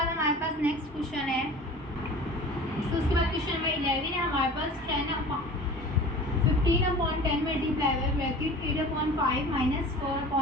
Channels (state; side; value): normal; both; correlation 0.40